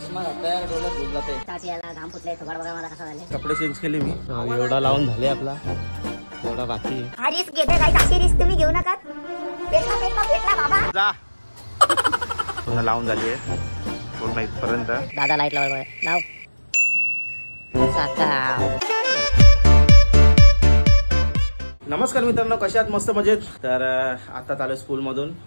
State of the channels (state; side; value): inverted; both; correlation -1.00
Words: घातलाय डोळ्यात झोप जाते. तात्याला घाम फुटले थोडा बघा मला कसं झालं. कपडे चेंज केले मी. एवढा लावून झाले आपला एवढा बाकी. हा रिस्क घेते काही अशी रिस्क तुम्ही घेऊ नका. पेटला बाबा जा. पूर्ण लावून झाली आहे पूर्ण इथपर्यंत. दादा लाईट लाव लाव साका. नमस्कार मित्रांनो, कशा आहात? मस्त मजेत. तर आता चालू स्कूलमधून.